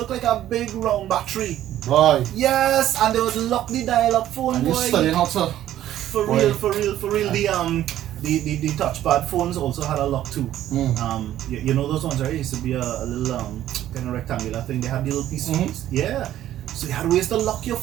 like a big round battery. Boy. Yes, and they would lock the dial up phone, and boy. You studying how to for real. The touchpad phones also had a lock too. You know those ones, right? It used to be a little kind of rectangular thing. They had the little piece. Yeah. So you had ways to lock your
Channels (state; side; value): quieter; left; 12.6 dB